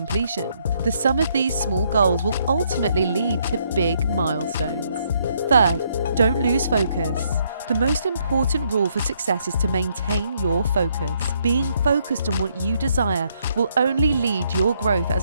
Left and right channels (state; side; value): inverted; both; correlation -0.72